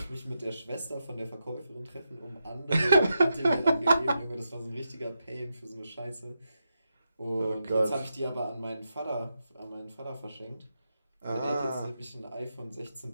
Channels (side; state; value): both; inverted; correlation -0.86